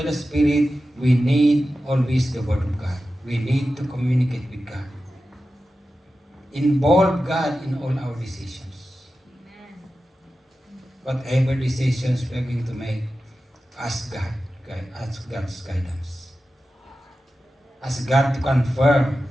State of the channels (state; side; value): normal; both; correlation 0.93